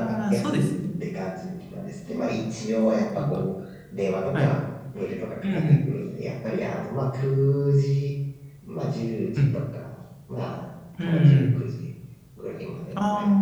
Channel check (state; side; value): identical; both; correlation 1.00